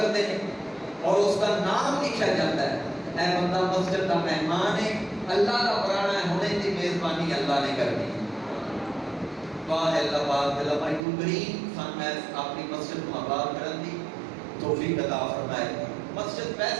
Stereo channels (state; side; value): drops out; left; at 11.0 s